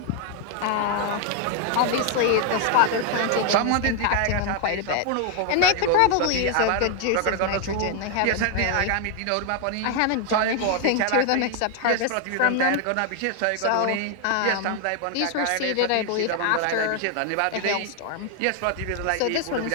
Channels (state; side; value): different; both; correlation 0.00